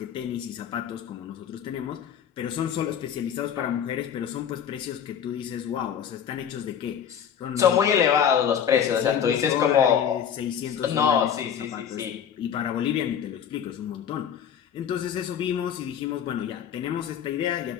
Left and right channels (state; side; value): quieter; right; 8.5 dB